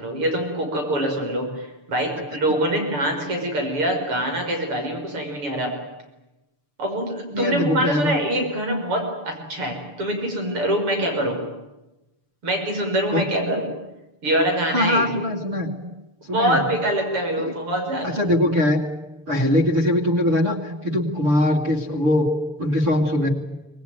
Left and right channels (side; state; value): left; late; 6.8 ms